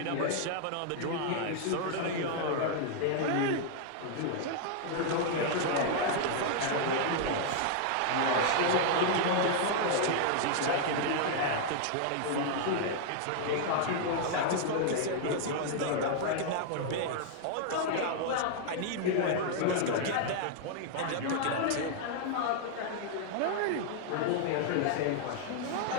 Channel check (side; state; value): both; different; correlation 0.00